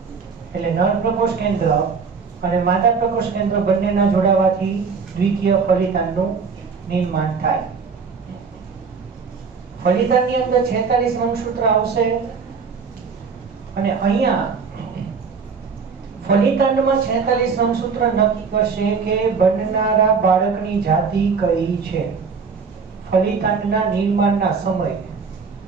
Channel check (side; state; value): left; quieter; 5.4 dB